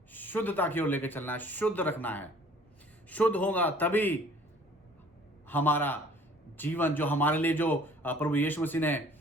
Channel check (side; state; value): both; normal; correlation 0.53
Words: शुद्धता की ओर लेकर चलना है, शुद्ध रखना है. शुद्ध होगा तभी हमारा जीवन, जो हमारे लिए जो प्रभु यीशु मसीह ने